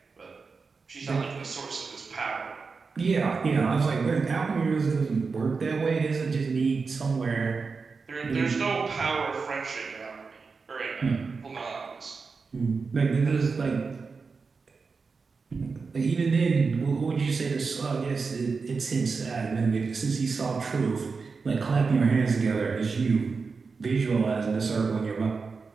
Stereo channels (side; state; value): left; quieter; 4.7 dB